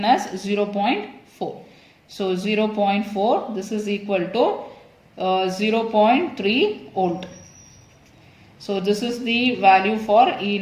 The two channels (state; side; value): identical; both; correlation 1.00